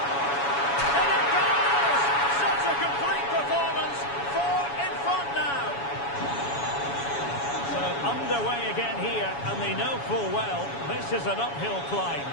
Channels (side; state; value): right; late; 7.1 ms